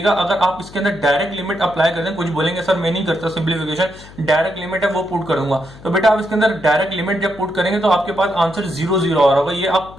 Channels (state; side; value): noise; left; hum, 19 dB below the sound